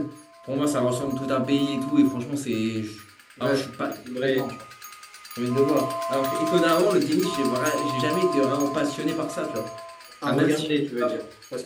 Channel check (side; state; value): both; identical; correlation 1.00